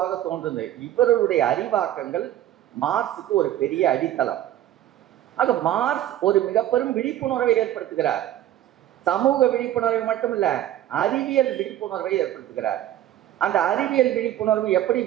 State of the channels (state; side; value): quieter; left; 12.5 dB